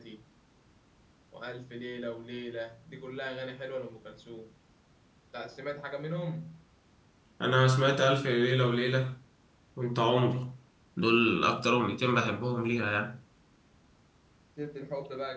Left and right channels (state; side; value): identical; both; correlation 1.00